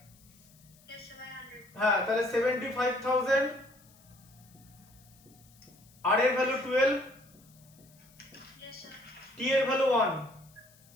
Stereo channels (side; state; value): left; noise; hiss, 27 dB below the sound